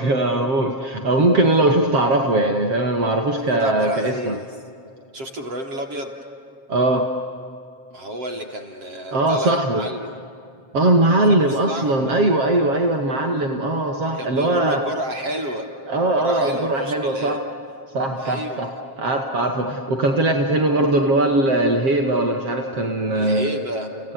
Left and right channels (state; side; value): late; left; 7.5 ms